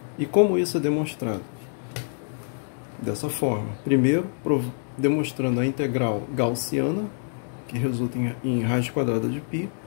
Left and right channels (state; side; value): silent; right; 61 dB below the other